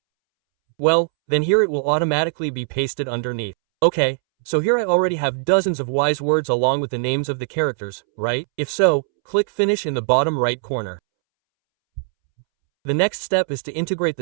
Well, then here it will automatically be pasted underneath. Okay, so here I already have dozens of wise words along with the names of the characters, right? If so, click Finish in the bottom right corner. The next step is to integrate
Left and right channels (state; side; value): silent; left; 65 dB below the other